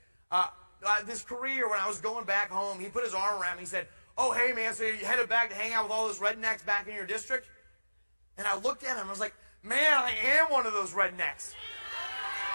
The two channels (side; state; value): both; inverted; correlation -1.00